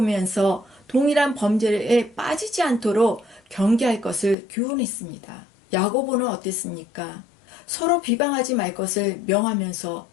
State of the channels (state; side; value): drops out; right; at 4.4 s